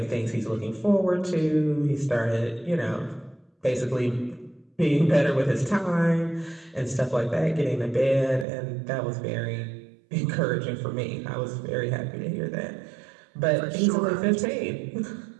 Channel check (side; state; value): left; drops out; at 8.5 s